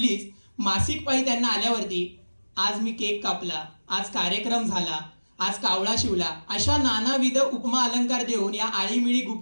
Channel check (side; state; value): both; inverted; correlation -1.00